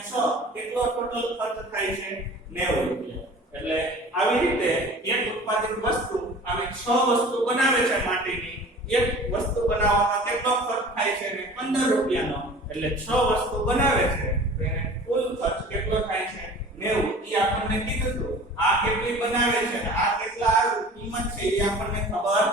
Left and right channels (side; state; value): both; normal; correlation 0.43